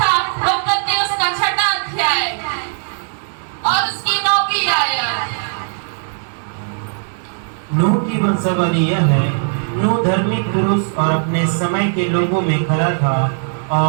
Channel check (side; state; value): left; silent; digital silence